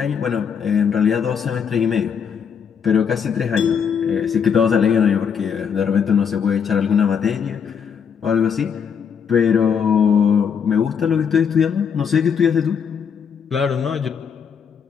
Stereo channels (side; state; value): right; quieter; 7.0 dB